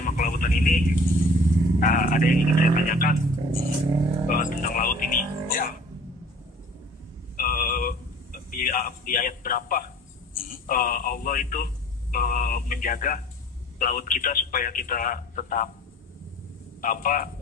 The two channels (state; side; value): normal; both; correlation 0.48